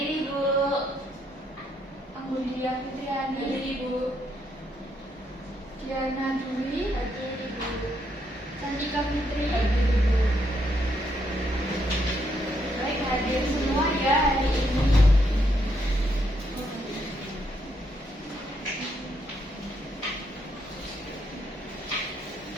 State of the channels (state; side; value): normal; both; correlation 0.76